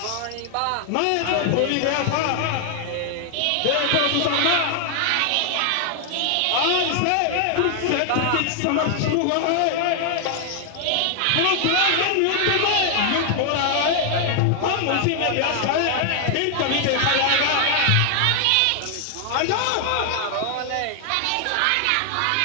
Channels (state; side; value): different; both; correlation 0.00